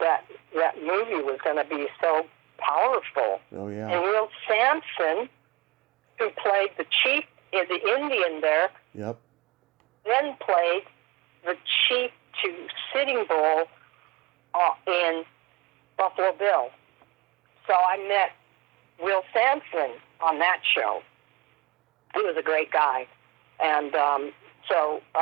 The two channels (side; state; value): left; quieter; 23.6 dB